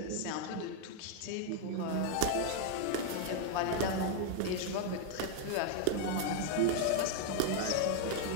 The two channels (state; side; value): different; both; correlation 0.00